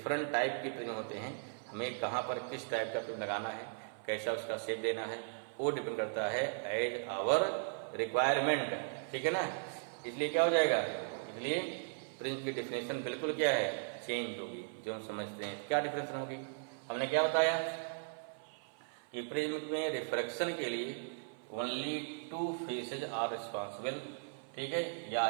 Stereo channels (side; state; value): left; silent; 53 dB below the other